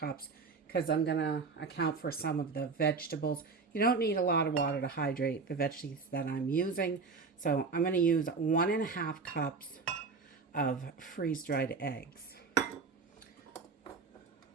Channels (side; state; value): left; quieter; 4.6 dB